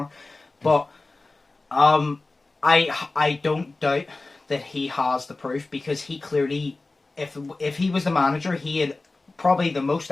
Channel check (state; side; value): quieter; right; 3.3 dB